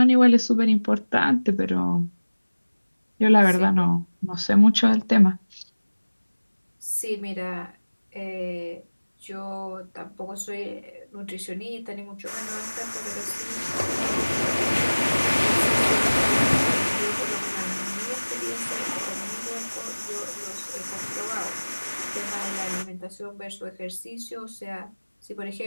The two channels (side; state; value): both; inverted; correlation -1.00